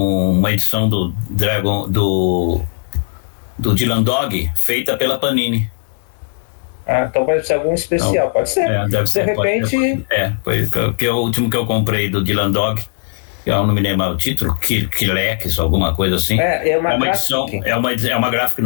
edição do Dragon do Dylan Dog feita pela Panini. Então vai ser algum especial, pode ser. Deve ser. De repente. Porque o último que eu comprei do Dylan Dog, eu não me lembro o título, Kilex, alguma coisa assim. É uma edição, é uma graphic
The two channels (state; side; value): silent; right; 68 dB below the other